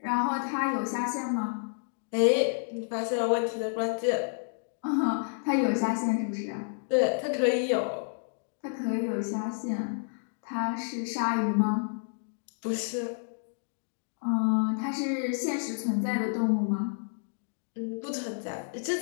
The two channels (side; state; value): right; silent; digital silence